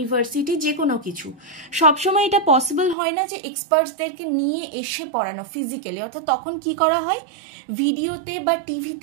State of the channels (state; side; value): drops out; left; at 3.0 s